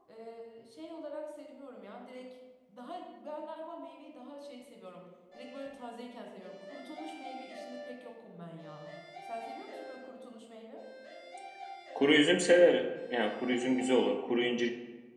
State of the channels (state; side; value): identical; both; correlation 1.00